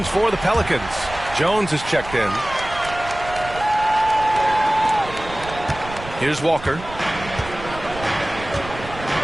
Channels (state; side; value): noise; right; rumble, 13 dB below the sound